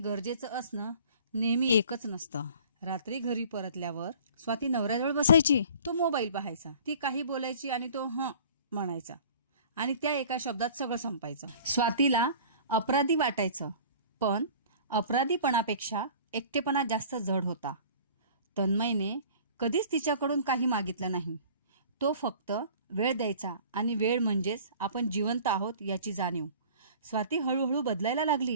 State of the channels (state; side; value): inverted; both; correlation -0.47